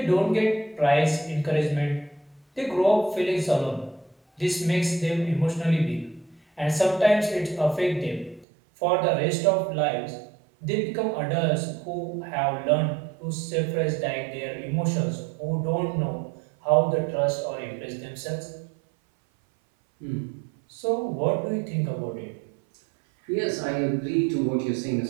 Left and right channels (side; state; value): left; drops out; at 8.5 s